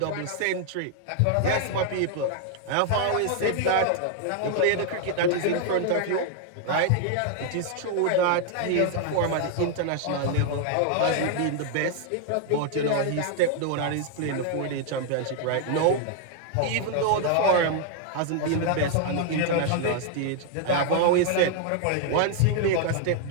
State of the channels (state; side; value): different; both; correlation 0.00